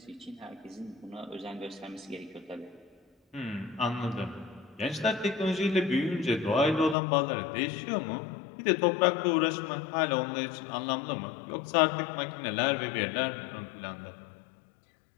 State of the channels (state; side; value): drops out; right; at 7.0 s